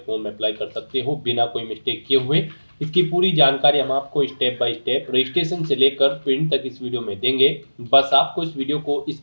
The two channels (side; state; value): both; inverted; correlation -1.00